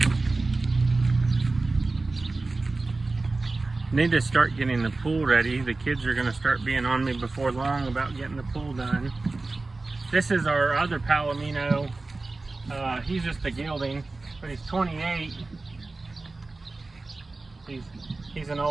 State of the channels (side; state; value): left; quieter; 3.4 dB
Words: Need to start getting the pool ready. The kids are going to start being on me before long about getting the pool done. This is our other Palomino. He's just a gelding, but he's 28. He's an